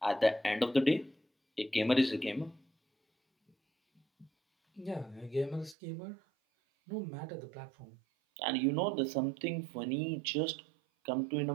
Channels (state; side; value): drops out; left; at 5.8 s